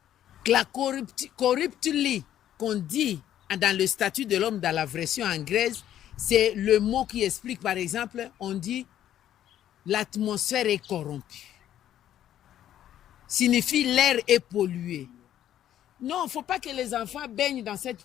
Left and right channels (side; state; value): right; quieter; 11.4 dB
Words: La corruptly qu'on dit dans le statut de l'homme dans la version anglaise, c'est le mot qui explique, par exemple, on dit l'atmosphère est corrompue. Signifie l'air est pollué. Non, il ne faut pas que les enfants baignent dans cette